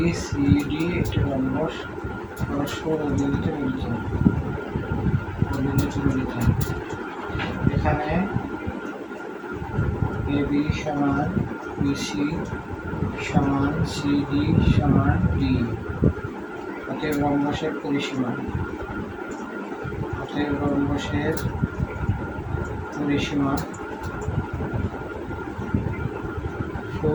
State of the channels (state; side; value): identical; both; correlation 1.00